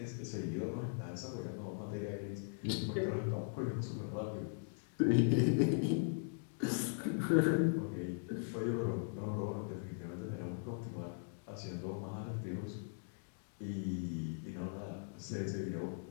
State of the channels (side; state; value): right; silent; digital silence